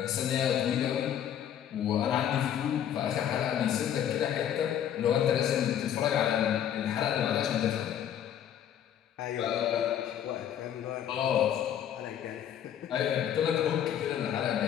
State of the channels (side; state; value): right; quieter; 9.9 dB